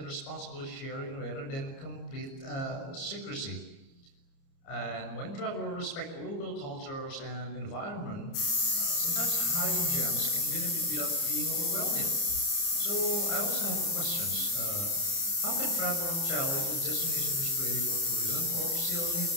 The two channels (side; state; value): right; late; 30 ms